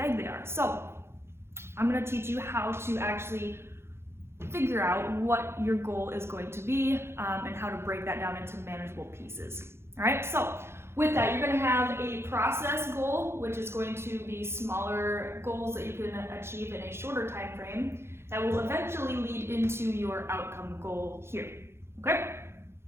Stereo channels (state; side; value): late; left; 0.12 ms